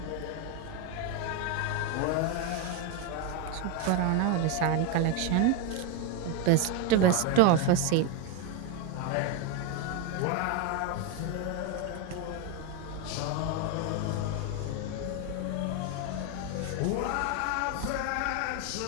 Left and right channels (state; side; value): different; both; correlation 0.02